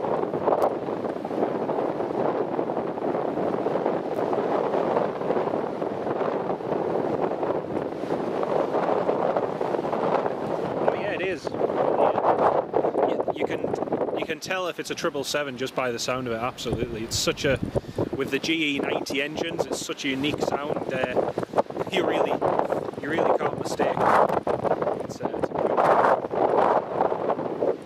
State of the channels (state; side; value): identical; both; correlation 1.00